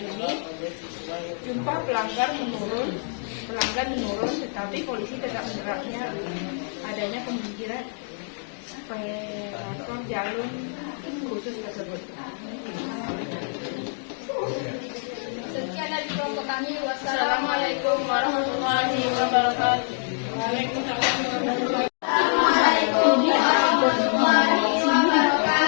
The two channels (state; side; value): silent; right; 58 dB below the other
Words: jumlah pelanggan menurun, tetapi polisi tetap menerapnya adanya pemanggilan operator jalur khusus tersebut. Sekian dari kelompok kami. Assalamualaikum warahmatullahi wabarakatuh. Waalaikumsalam warahmatullahi